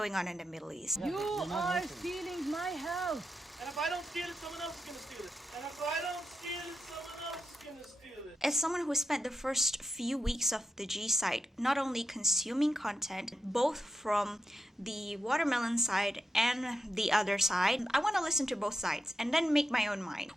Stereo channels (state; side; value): normal; both; correlation 0.87